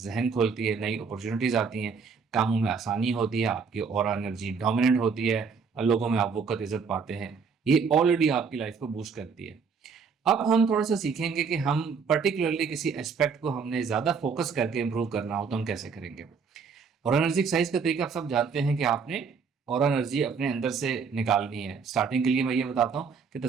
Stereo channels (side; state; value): left; quieter; 5.6 dB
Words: खोलती है, नई अपॉर्चुनिटीज़ आती हैं, कामों में आसानी होती है, आपकी ऑरा एनर्जी डोमिनेंट होती है, लोगों में आप वक़्त इज़्ज़त पाते हैं। ये ऑलरेडी आपकी लाइफ को बूस्ट करती है। अब हम थोड़ा-सा सीखेंगे कि हम पर्टिकुलरली किसी एस्पेक्ट को हमने ज़्यादा फ़ोकस करके इम्प्रूव करना हो तो हम कैसे करेंगे। और एनर्जी एक्सरसाइज का तरीका आप सब जानते हैं कि आपने और एनर्जी अपने अंदर से निकालनी है। स्टार्टिंग के लिए मैं ये बताता हूँ कि